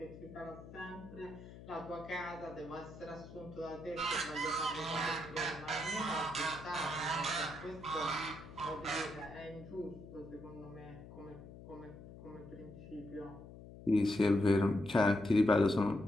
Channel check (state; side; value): noise; left; hum, 15 dB below the sound